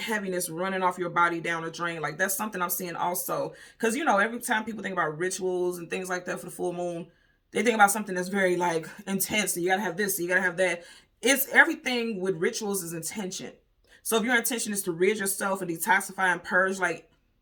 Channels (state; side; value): identical; both; correlation 1.00